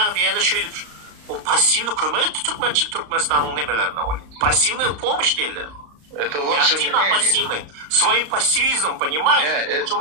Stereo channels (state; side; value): late; left; 34 ms